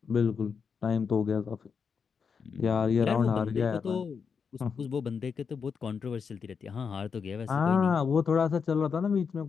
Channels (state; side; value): quieter; right; 6.1 dB